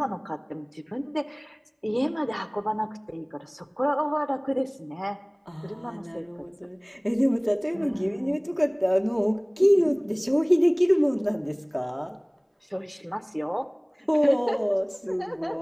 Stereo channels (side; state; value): both; identical; correlation 1.00